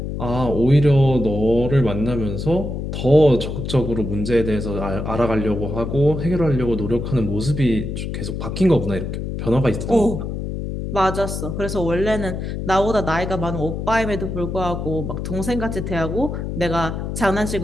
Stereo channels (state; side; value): noise; left; hum, 4 dB below the sound